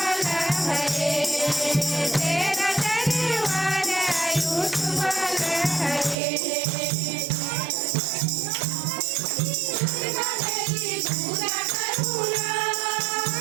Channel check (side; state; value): left; drops out; at 6.2 s